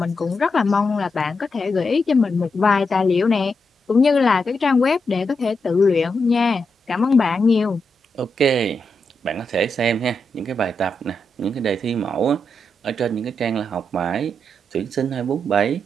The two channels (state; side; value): normal; both; correlation 0.84